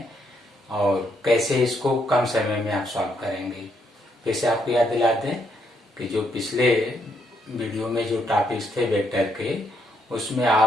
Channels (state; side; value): normal; both; correlation 0.74